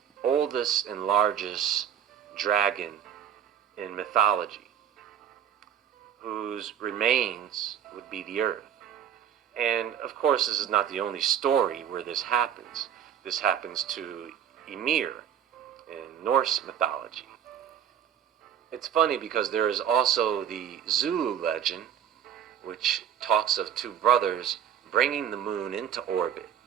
oldest and largest dragon in mythology, whose remains would be the earth. And of course, this is not the only story where this happens. This happens to Ymir in Norse mythology. It's funny because there is also the Zulu legend, which talks of two brothers bringing the moon into orbit,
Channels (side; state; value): left; quieter; 9.4 dB